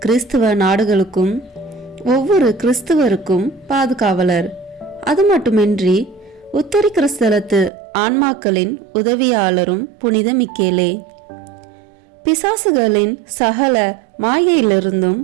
கிறிஸ்துவ நாடுகளுக்கும் ஒவ்வொரு கிறிஸ்துவருக்கும் பாதுகாவலர். அது மட்டுமின்றி உத்தரி கிறிஸ்தலத்து ஆன்மாக்களின் உதவியாளரும் புனித மிக்கேலே. பிசாசுகளின் சகல மாயையிலிருந்தும்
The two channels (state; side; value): drops out; left; at 7.7 s